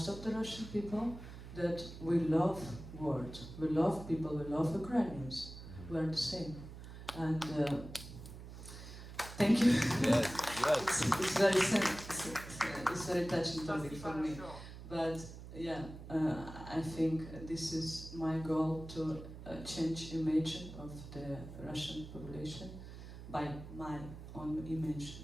of the Russian people that we love world, we love people, we love Ukrainians. We are the same. And thank you. Yes, yes. It's very touching topic for me. But yeah, I think this is my goal, to change image of the Russian population by my own image.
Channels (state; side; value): noise; right; hum, 12 dB below the sound